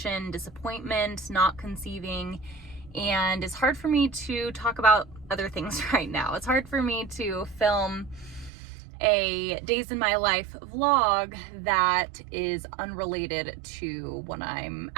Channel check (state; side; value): drops out; left; at 8.5 s